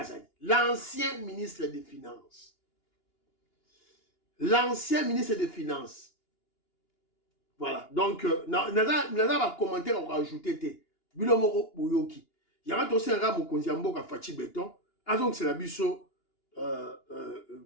l'ancien ministre des Finances. L'ancien ministre des Finances. Voilà. Donc, Nada va commenter, on va ajouter Bilomoro Bouyoki. Il y a aussi un gars qui a fait béton. Donc, c'est la biso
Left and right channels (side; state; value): right; late; 2.9 ms